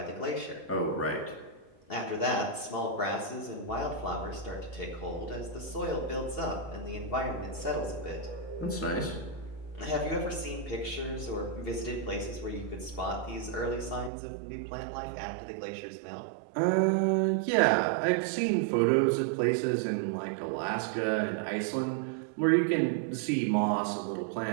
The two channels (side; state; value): left; drops out; at 14.1 s